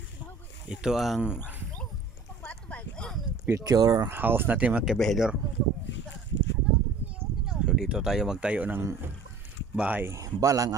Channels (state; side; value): quieter; left; 4.3 dB